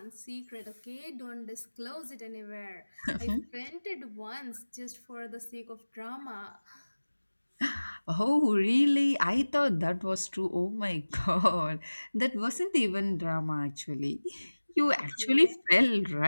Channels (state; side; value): inverted; both; correlation -1.00